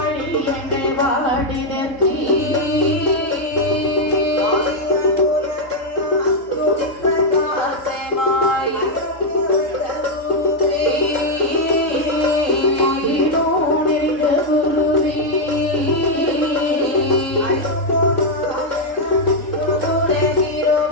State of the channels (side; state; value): right; late; 3.8 ms